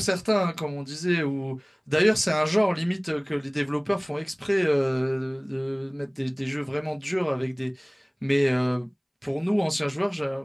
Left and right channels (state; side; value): identical; both; correlation 1.00